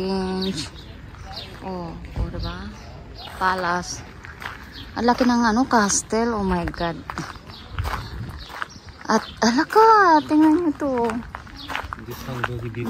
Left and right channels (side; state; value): both; identical; correlation 1.00